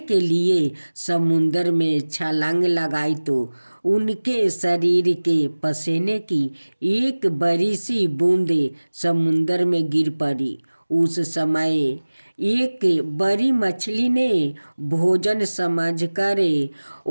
के लिए समुद्र में छलांग लगाई तो उनके शरीर के पसीने की एक बड़ी सी बूंदे समुद्र में गिर पड़ी। उस समय एक बड़ी मछली ने भोजन समझकर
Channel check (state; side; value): inverted; both; correlation -1.00